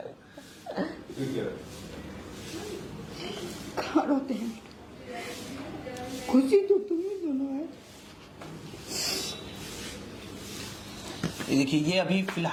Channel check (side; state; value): both; identical; correlation 1.00